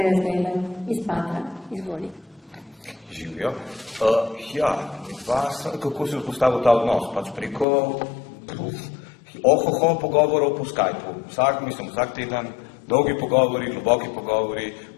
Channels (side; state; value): right; drops out; at 7.7 s